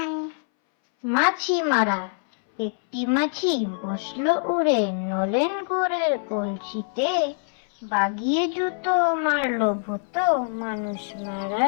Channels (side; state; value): right; silent; 61 dB below the other